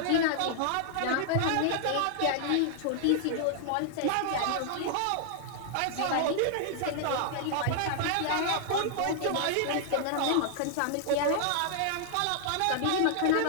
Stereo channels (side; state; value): both; different; correlation -0.01